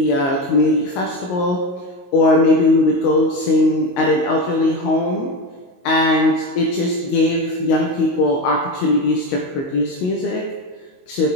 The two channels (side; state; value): right; late; 22 ms